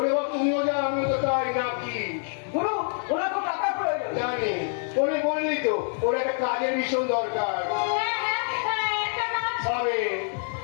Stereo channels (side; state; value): right; silent; 61 dB below the other